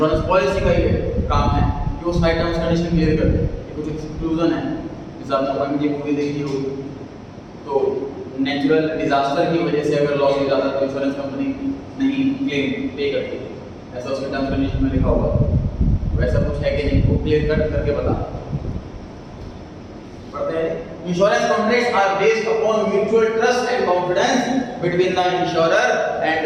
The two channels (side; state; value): both; identical; correlation 1.00